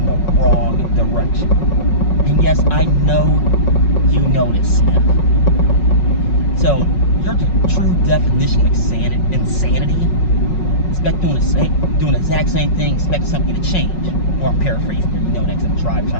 the wrong direction. And yes, I know you know this, Smith. So, you're the true definition of insanity. Expect doing the exact same thing, expect something to change. Or I'm paraphrasing, you know that because I'm driving,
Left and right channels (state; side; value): late; right; 5.4 ms